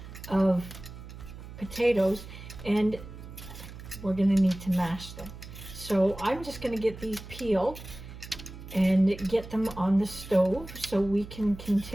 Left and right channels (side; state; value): right; noise; hum, 14 dB below the sound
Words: of potatoes, and we're going to need to mash them. So I'm just going to get these peeled and get them on the stove so we can